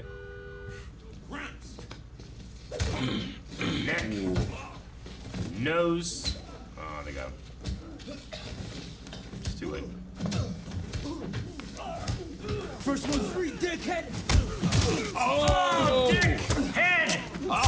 Neck. Nose. Oh, they got him. It's too late. First one free, dickhead! Oh, dick! Head!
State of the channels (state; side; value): identical; both; correlation 1.00